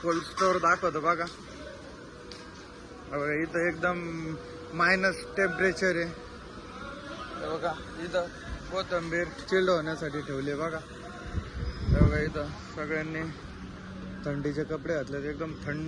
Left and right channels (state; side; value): identical; both; correlation 1.00